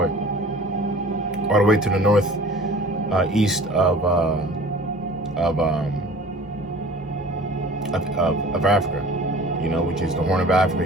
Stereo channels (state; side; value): normal; both; correlation 0.45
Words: the north east of Africa, you know, which is the Horn of Africa,